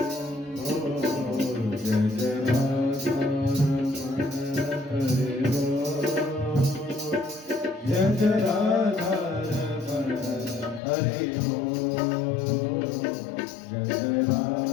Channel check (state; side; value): drops out; right; at 10.8 s